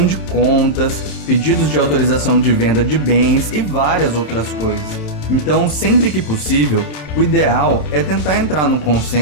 de contas, pedidos de autorização de venda de bens e várias outras coisas. Então, sempre que possível, o ideal é tentar entrar num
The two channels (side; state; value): right; late; 27 ms